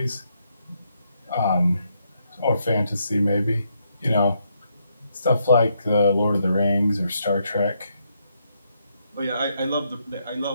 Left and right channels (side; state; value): both; inverted; correlation -0.77